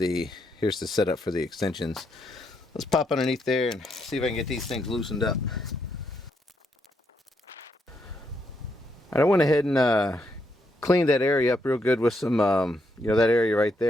setup for the extensions. Let's pop underneath there and see if I can get these things loosened up. I went ahead and cleaned that area up real good with some, you know, that area right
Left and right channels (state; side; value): normal; both; correlation 0.78